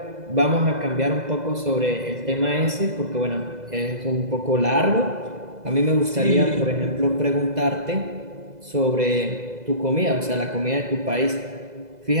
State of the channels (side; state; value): left; late; 2.0 ms